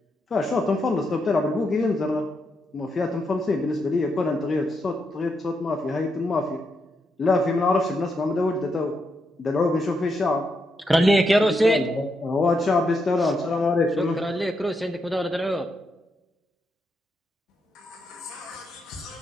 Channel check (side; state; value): both; normal; correlation 0.82